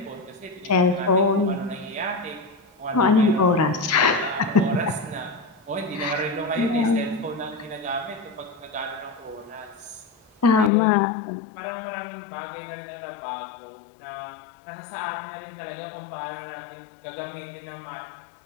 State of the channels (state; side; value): drops out; right; at 10.7 s